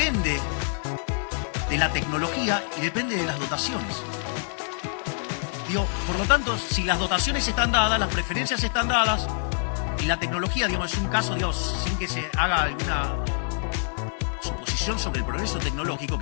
de la tecnología y depende de las dotaciones. Por lo tanto, si las dotaciones están dadas, las preferencias están dadas y la tecnología, es un caso, sin que se haga alguna suposición sobre el progreso tecnológico,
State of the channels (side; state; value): right; silent; digital silence